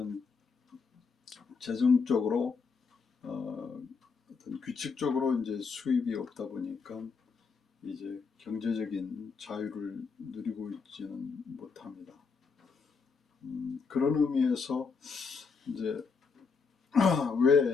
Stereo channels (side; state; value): right; quieter; 5.1 dB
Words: 재정적으로 어떤 규칙적으로 이제 수입이 없다 보니까 이제 경제적인 자유를 누리고 있지는 못합니다. 그런 의미에서 이제